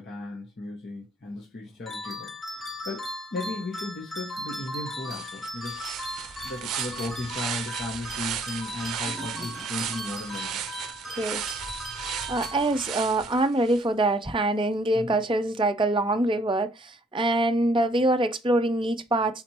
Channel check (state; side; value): normal; both; correlation 0.63